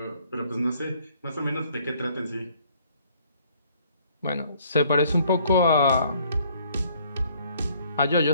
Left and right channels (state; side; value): inverted; both; correlation -0.62